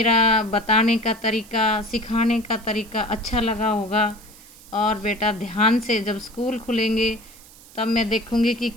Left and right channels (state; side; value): noise; right; hiss, 22 dB below the sound